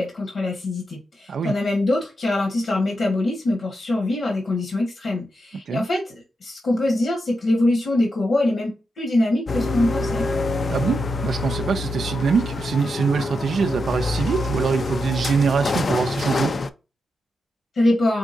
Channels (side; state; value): both; normal; correlation 0.86